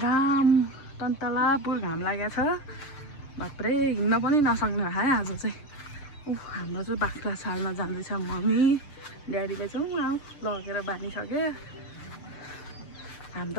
तन्तलापुर घाम लागेको छ। बाप्रे हिँड्न पनि नसक्ने भयो है आज चाहिँ। हाम्रो चाहिँ बाख्रा छाड्न जाँदैछ मम्मी, ड्याडीले चाहिँ लगेर बानिसक्यो। हामी त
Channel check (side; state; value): right; late; 6.7 ms